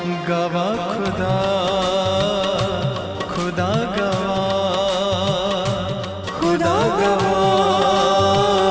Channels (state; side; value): identical; both; correlation 1.00